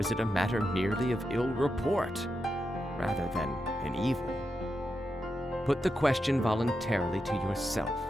it a matter merely of ill report, rather than an evil? Put the question voluntarily to yourself.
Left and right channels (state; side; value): normal; both; correlation 0.87